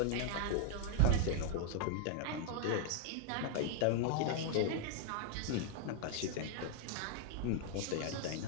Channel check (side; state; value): both; different; correlation 0.00